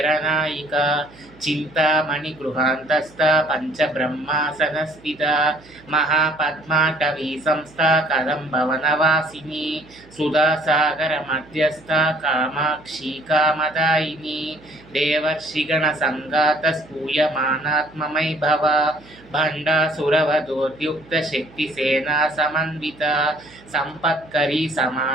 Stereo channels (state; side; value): noise; right; hum, 24 dB below the sound